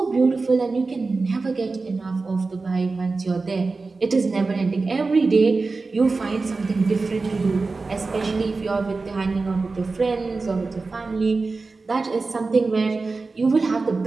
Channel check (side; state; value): left; quieter; 3.9 dB